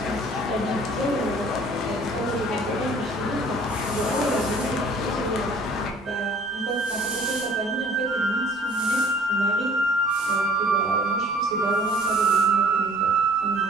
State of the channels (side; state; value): both; normal; correlation 0.53